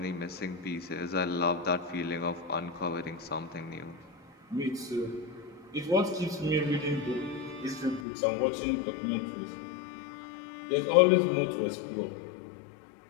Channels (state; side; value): drops out; right; at 8.1 s